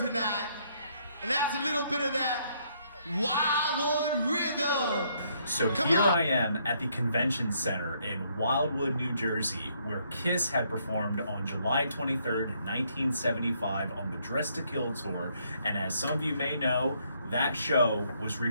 and that's a little bit of that Wildwood rhythm. So here I am at the convention center in Wildwood, New Jersey, where Kiss had performed on July 23rd, 1975 on the Dress to Kill tour. And as some of you may know, that show was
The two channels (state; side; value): inverted; both; correlation -0.70